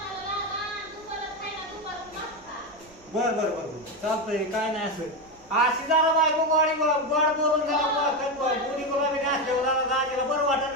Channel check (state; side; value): noise; right; rumble, 27 dB below the sound